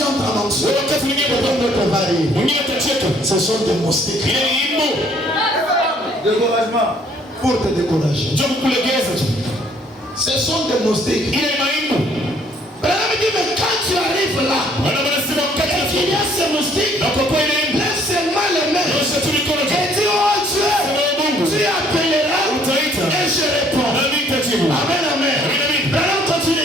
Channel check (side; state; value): both; normal; correlation 0.62